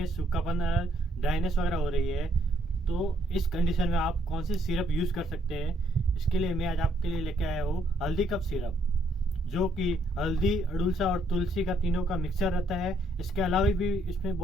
सूखापन, ड्राइनेस वगैरह हो रही है, तो इस कंडीशन में आप कौन सी सिरप यूज़ कर सकते हैं। इसके लिए मैं आज आपके लिए लेके आया हूँ हल्दी कप सिरप, जो कि हल्दी, अड़ुलसा और तुलसी का तीनों का मिक्सर रहता है। इसके अलावा भी इसमें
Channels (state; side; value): normal; both; correlation 0.70